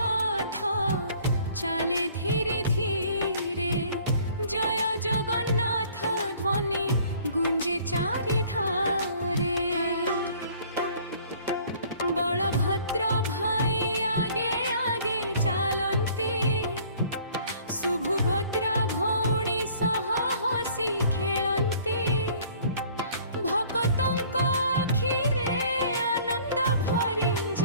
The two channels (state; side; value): inverted; both; correlation -0.54